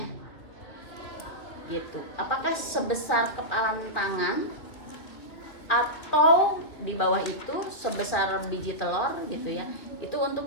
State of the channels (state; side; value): late; right; 2.8 ms